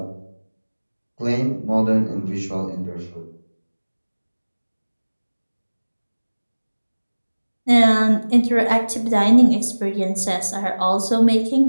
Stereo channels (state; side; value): inverted; both; correlation -1.00